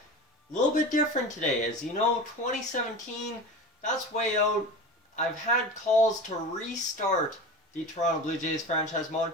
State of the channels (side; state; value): both; normal; correlation 0.30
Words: A little bit different today, as you know, 2017, that's way out. I've had calls to restart the Toronto Blue Jays franchise mode,